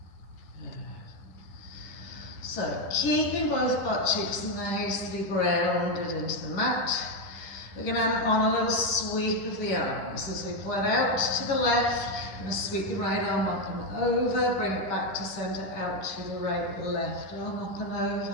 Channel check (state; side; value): late; right; 10 ms